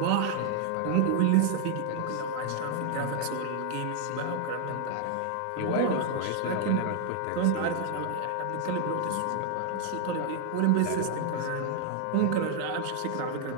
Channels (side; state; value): both; different; correlation 0.00